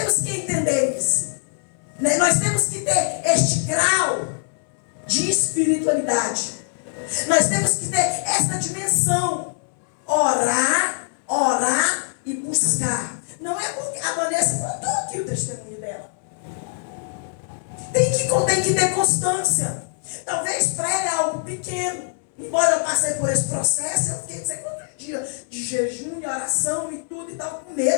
que entender isso. orar, orar e buscar. Não é porque a Vanessa contou aqui o testemunho dela. Tem que ter constância. Talvez para ela é algo pequeno. Embora eu passei por esse processo, eu fiquei não sei quantos dias de jejum e oração e tudo e tal, com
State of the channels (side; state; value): right; silent; 64 dB below the other